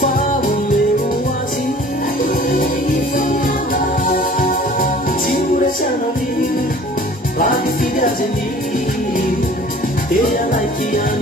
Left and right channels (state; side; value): normal; both; correlation 0.48